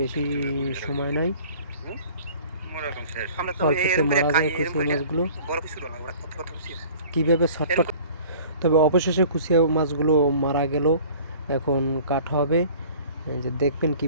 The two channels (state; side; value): inverted; both; correlation -0.48